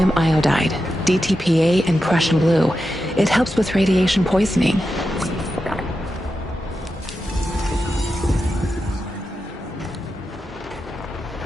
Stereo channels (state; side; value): normal; both; correlation 0.89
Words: iodide, DTPA, and Prussian blue. It helps with radiation poisoning.